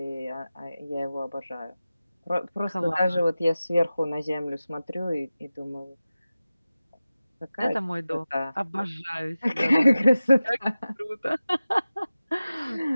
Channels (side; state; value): both; inverted; correlation -0.95